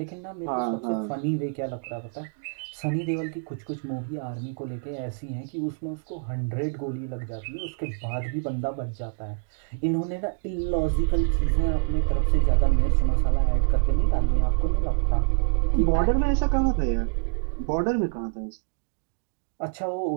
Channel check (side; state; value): left; silent; digital silence